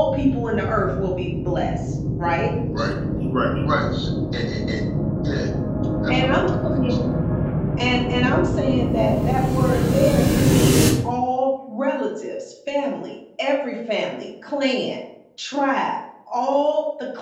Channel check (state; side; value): identical; both; correlation 1.00